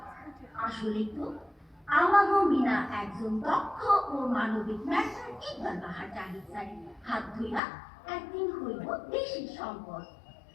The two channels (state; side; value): drops out; right; at 7.6 s